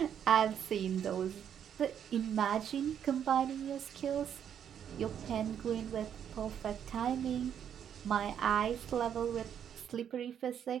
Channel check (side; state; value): left; quieter; 8.9 dB